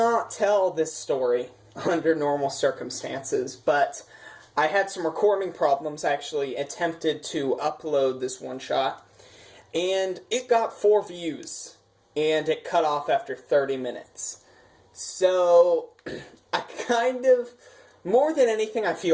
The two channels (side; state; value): both; identical; correlation 1.00